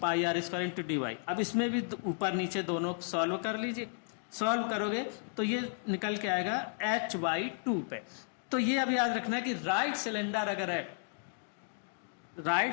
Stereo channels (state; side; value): silent; right; digital silence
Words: R square into D Y. अब इसमें भी ऊपर नीचे दोनों सॉल्व कर लीजिए, सॉल्व करोगे तो ये निकल के आएगा h/2 पे। तो ये अब याद रखना है कि राइट सिलेंडर